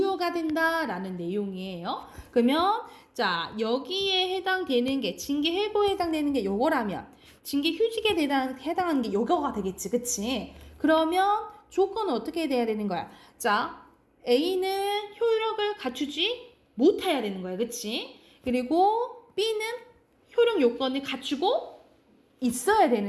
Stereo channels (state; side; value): identical; both; correlation 1.00